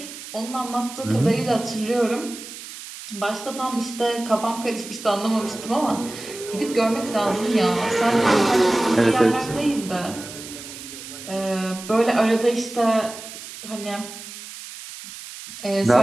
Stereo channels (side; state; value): right; noise; hiss, 13 dB below the sound